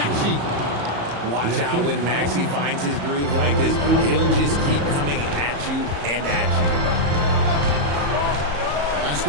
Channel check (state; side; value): late; left; 34 ms